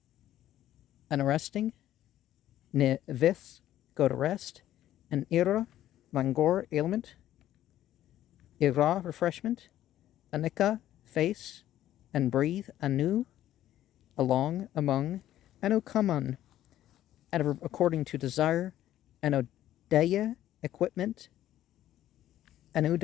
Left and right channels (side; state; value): right; quieter; 12.8 dB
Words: an arresting. Neviths, go to rest. An ira, langor, ailment. Ira, refreshment. Anika, face. And breathe, anu, along, among. Anukaman, adverb according to desire. Anodeya, equipment.